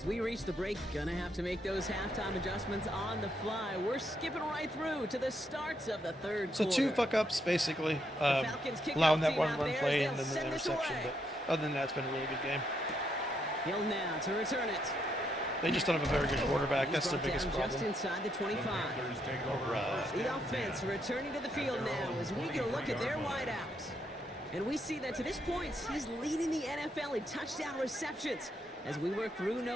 we reach the break. Gonna have to make those halftime adjustments on the fly. We're skipping right through to the starts of the 3rd So quarter. 2 fuck-ups, basically. Falcons kick Allowing off that team one out run there play as and they'll then the send this interception. away. But other than that, it's been a really good game. Hill now to return it. They just don't have a very good quarterback. That's their He's brought biggest down just problem. inside the 25. Panthers take over first The and offense 10. returning to the field now as we get a look at their wideouts. And we see that to this point, he's leading the NFL in touchdown receptions as we work through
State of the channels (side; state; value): both; normal; correlation 0.77